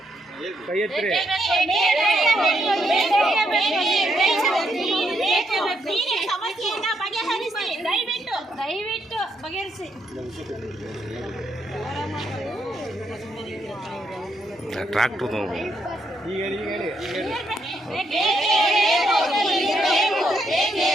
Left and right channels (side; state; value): both; normal; correlation 0.77